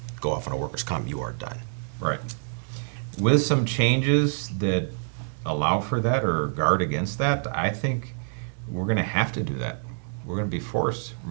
go off on a workers' comp, you are done. Right. With some changes that allow for that or guard against that, I think we're going to have to do that. We're going to be forced.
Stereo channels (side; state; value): left; silent; 61 dB below the other